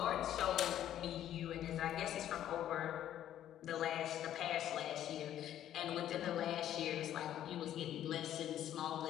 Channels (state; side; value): quieter; right; 11.5 dB